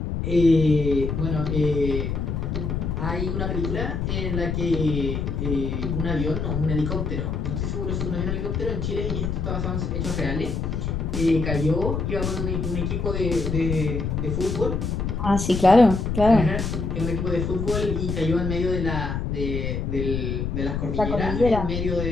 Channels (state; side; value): noise; left; rumble, 2 dB below the sound